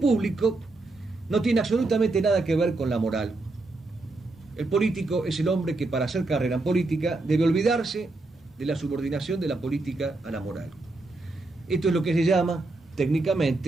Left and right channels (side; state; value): left; quieter; 3.2 dB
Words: no tiene absolutamente nada que ver con la moral. El político es el hombre que para hacer carrera en política debe olvidarse de la subordinación de la política a la moral. Esto es lo que se llama